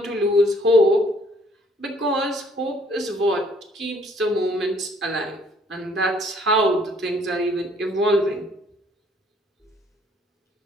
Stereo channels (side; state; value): both; normal; correlation 0.62